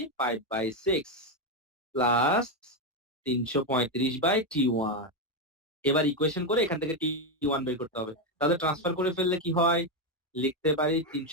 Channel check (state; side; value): normal; both; correlation 0.07